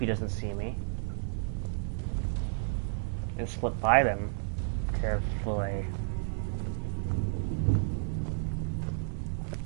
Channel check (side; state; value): left; silent; digital silence